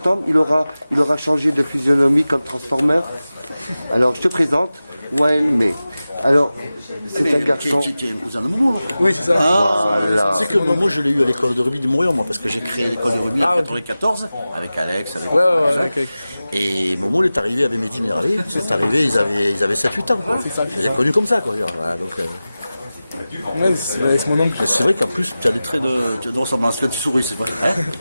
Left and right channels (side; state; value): both; inverted; correlation -0.95